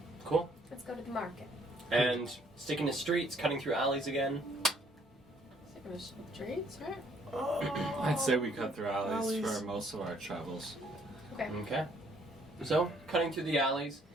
Cool. Let's go to the market. And sticking to streets, cutting through alleys again. Sticking to streets, right? I'd say we cut through alleys Alleys. for most of our travels. Okay. Okay. So, cutting through the alleys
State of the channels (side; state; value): both; normal; correlation 0.65